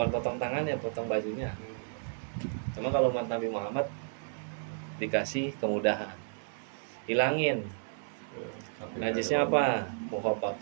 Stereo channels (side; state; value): left; silent; digital silence